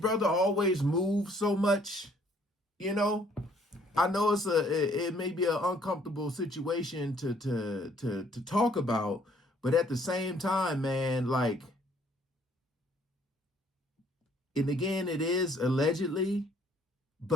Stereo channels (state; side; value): normal; both; correlation 0.62